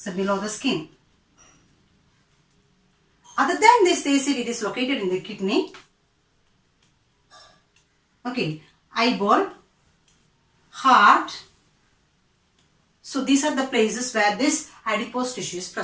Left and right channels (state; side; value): identical; both; correlation 1.00